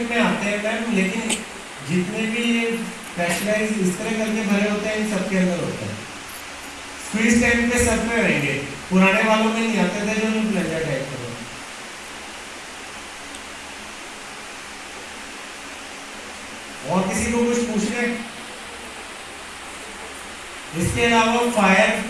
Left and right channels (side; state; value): both; identical; correlation 1.00